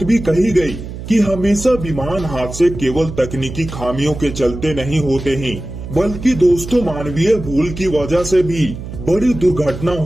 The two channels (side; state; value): right; noise; hum, 10 dB below the sound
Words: भी कही गई कि हमेशा विमान हादसे केवल तकनीकी खामियों के चलते नहीं होते हैं, बल्कि दोस्तों मानवीय भूल की वजह से भी बड़ी दुर्घटना